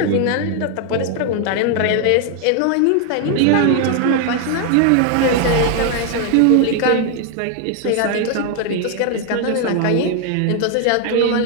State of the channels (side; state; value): both; different; correlation 0.00